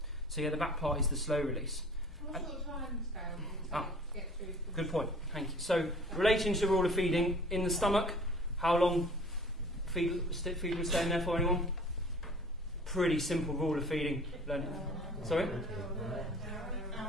So yeah, the back part is the slow release. What sort of time scale do you get through? Good point. Thank you. So relating to the rule of feeding in the stomach, how long feed would stay in there for anyone? Pretty simple rule of feeding. Sorry?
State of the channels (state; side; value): normal; both; correlation 0.48